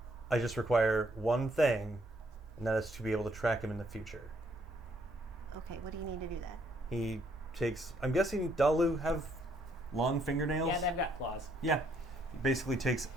I just require one thing, and that is to be able to track him in the future. Okay, what do you need to do that? He takes. I'm guessing Dalu have long fingernails. Yeah, they've got claws. Yeah. He basically takes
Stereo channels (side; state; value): both; normal; correlation 0.69